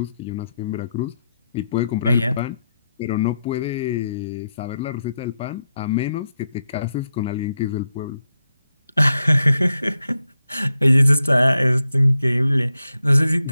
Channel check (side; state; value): both; inverted; correlation -0.84